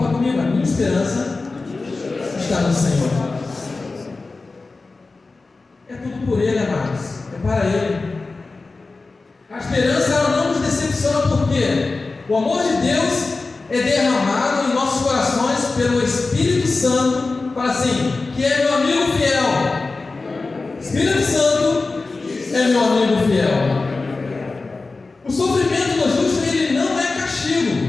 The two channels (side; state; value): right; quieter; 3.7 dB